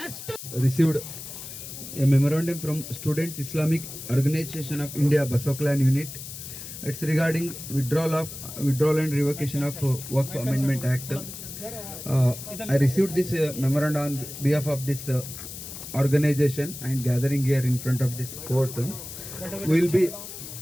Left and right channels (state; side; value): noise; left; hiss, 11 dB below the sound